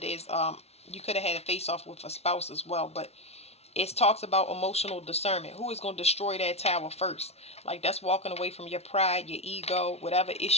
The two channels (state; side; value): late; right; 0.31 ms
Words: there's you could have had a face-off with a spouse as well. But it talks about emotional discernment. Who is going to destroy that tower first? Like, that's walking away from your pride, your ego, whatever